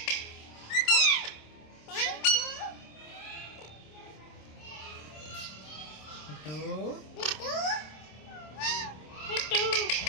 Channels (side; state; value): right; late; 26 ms